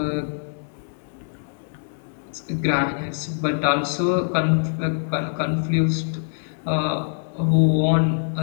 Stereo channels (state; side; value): silent; right; 63 dB below the other